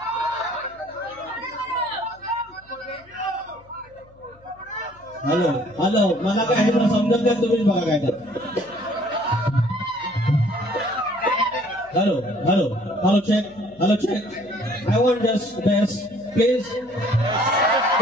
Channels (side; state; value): left; noise; hum, 28 dB below the sound